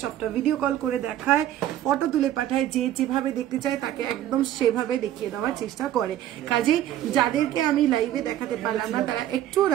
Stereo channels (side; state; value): left; quieter; 12.3 dB